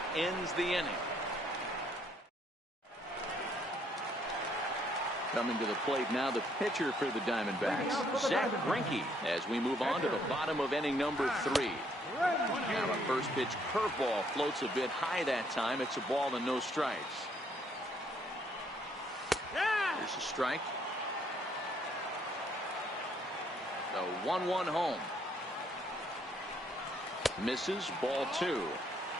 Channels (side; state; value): both; normal; correlation 0.68